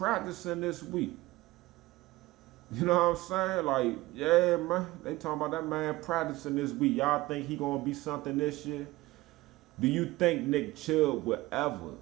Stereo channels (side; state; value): left; quieter; 19.4 dB